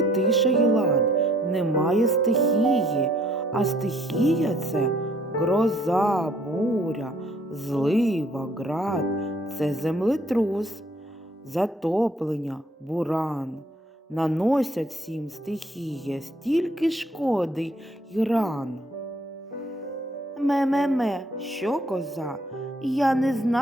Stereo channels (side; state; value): both; normal; correlation 0.62